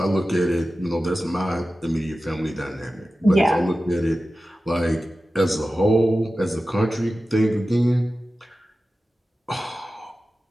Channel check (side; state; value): both; normal; correlation 0.95